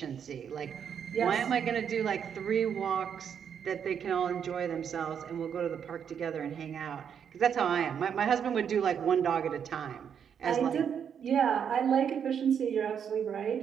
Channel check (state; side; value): quieter; left; 7.8 dB